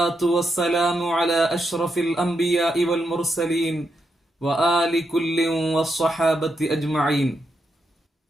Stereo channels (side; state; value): both; normal; correlation 0.83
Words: والسلام على أشرف الأنبياء والمرسلين وآل كل والصحابة أجمعين.